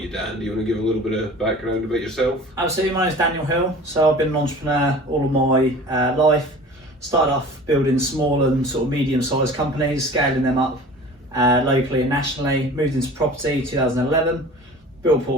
Dan, do you want to give a little bit of background about yourself? Absolutely. My name's Daniel Hill. So I've been an entrepreneur all of my life. Started off building small and sort of medium-sized companies, scaling them up locally and nationally. Moved into property 2011. Built a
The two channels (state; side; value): normal; both; correlation 0.42